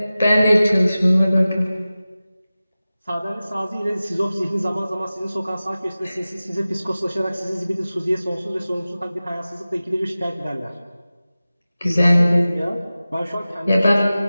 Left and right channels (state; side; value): inverted; both; correlation -0.96